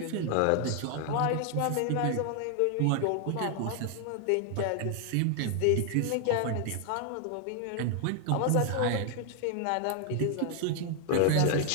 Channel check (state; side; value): different; both; correlation 0.00